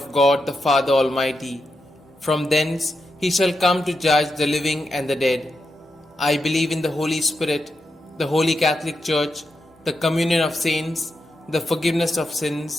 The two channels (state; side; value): normal; both; correlation 0.86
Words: God the Father Almighty. From thence he shall come to judge the living and the dead. I believe in the Holy Spirit, the Holy Catholic Church, the communion of saints, the forgiveness of